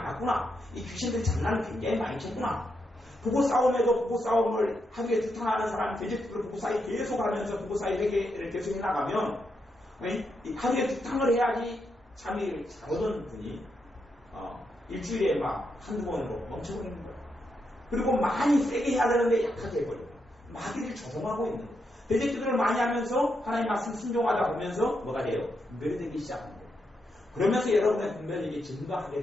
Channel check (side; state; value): both; normal; correlation 0.82